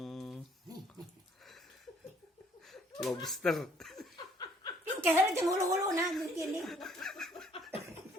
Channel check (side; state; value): both; normal; correlation 0.62